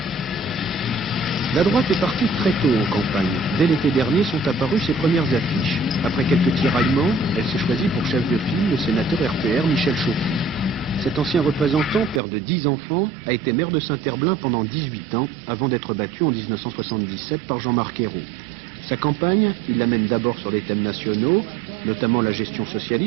La droite est partie très tôt en campagne. Dès l'été dernier sont apparues ses premières affiches. Après quelques tiraillements, elle s'est choisie pour chef de file le sénateur RPR Michel Chauty. Cet ancien représentant, père de 10 enfants, a été maire de Saint-Herblain pendant 18 ans, avant d'être battu en 1977 par Jean-Marc Ayrault. Sa campagne, il l'amène d'abord sur les thèmes nationaux, notamment la gestion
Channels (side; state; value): left; drops out; at 12.2 s